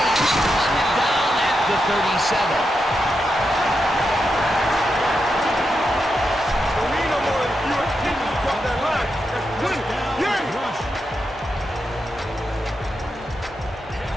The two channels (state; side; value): normal; both; correlation 0.86